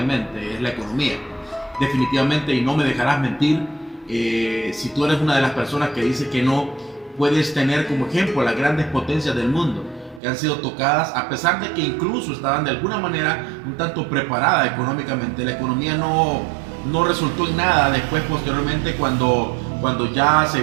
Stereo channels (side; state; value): left; drops out; at 10.2 s